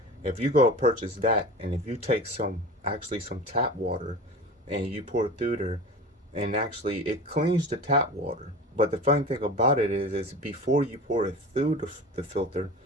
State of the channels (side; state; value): both; normal; correlation 0.34